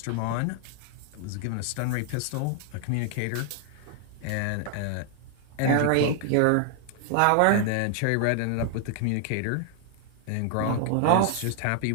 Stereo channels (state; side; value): different; both; correlation 0.00